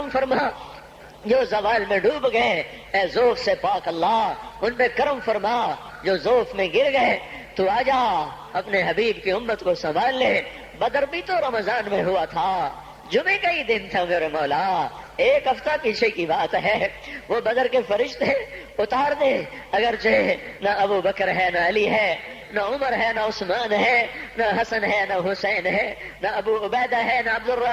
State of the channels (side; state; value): both; identical; correlation 1.00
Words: فرما، جو زوال میں ڈوب گئے، اے ذوف سے پاک اللہ، ان پہ کرم فرما، جو ذوف میں گر گئے، تو آجا اپنے حبیب کی امت کو سنبھال لے۔ بدر بھی تو رمضان میں ہوا تھا، جمعے کا ہی دن تھا میرے مولا، ایک ہفتہ پیچھے کی بات ہے، وہ بدر کے فرشتے اتار دے، اگرچہ نہ ابو بکر ہے، نہ علی ہے، نہ عمر ہے، نہ عثمان ہے، نہ حسن ہے، نہ حسین ہے، نہ ابو عبیدہ ہے، نہ عبد